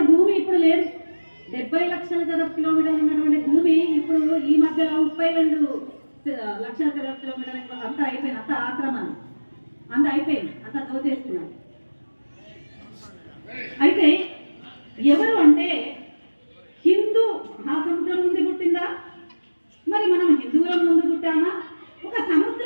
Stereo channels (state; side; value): inverted; both; correlation -1.00